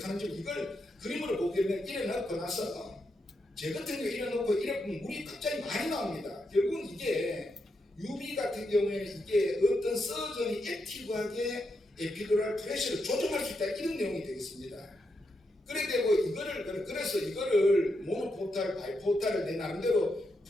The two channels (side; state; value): both; normal; correlation 0.83